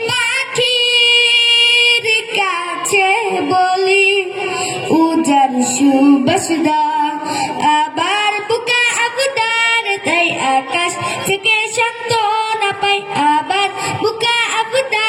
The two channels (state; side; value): identical; both; correlation 1.00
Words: পাখির কাছে বলি উজার সুবাসদা আবার বুকা আবদার তাই আকাশ থেকে সান্ত্বনা পাই আবার বুকা